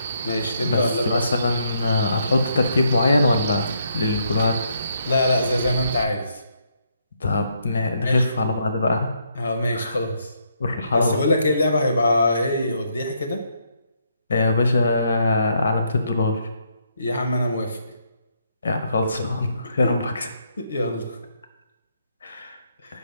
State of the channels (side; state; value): both; inverted; correlation -0.75